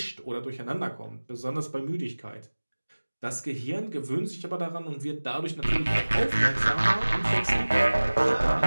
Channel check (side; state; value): both; inverted; correlation -1.00